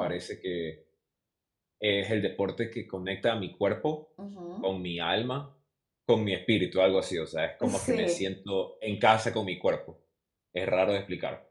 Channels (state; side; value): identical; both; correlation 1.00